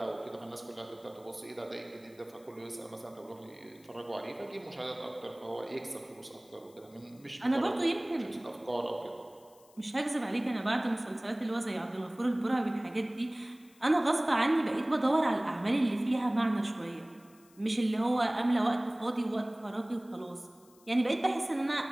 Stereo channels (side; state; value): left; noise; hiss, 28 dB below the sound